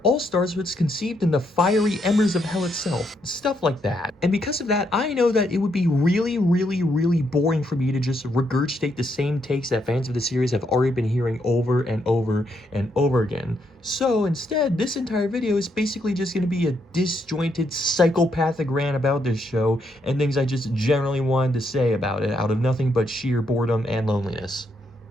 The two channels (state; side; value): normal; both; correlation 0.76